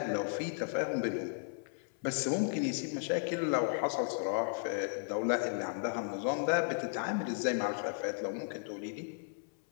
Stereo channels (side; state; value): right; silent; 54 dB below the other